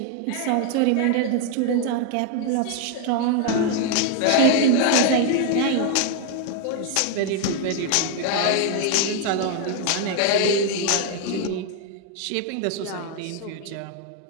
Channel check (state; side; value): different; both; correlation 0.01